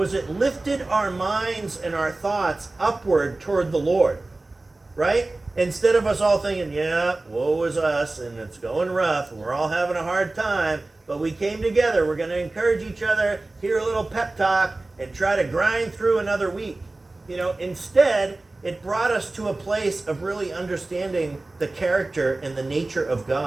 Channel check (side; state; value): left; quieter; 3.1 dB